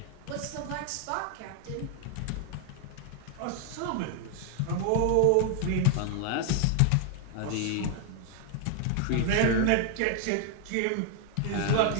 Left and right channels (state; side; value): different; both; correlation 0.00